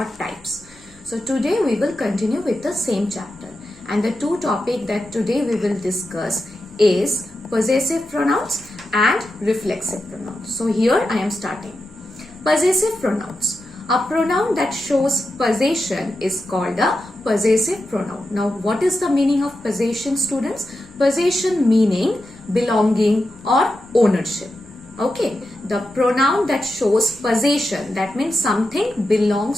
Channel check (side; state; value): left; noise; hum, 26 dB below the sound